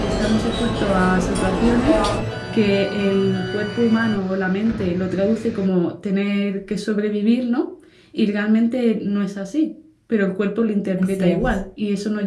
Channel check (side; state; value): both; identical; correlation 1.00